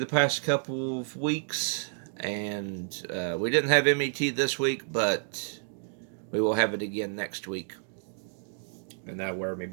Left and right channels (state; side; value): silent; left; digital silence